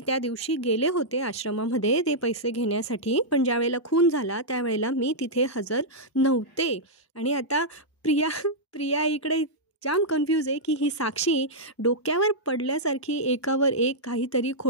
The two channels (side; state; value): both; normal; correlation -0.08